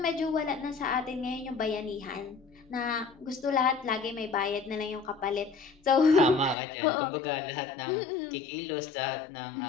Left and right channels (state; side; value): drops out; right; at 6.6 s